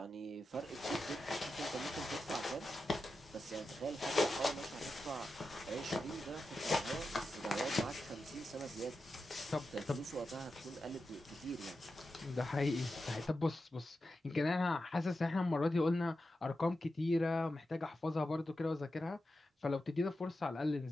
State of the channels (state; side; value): normal; both; correlation 0.90